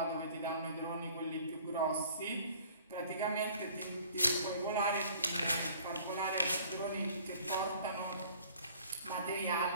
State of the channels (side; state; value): both; inverted; correlation -0.52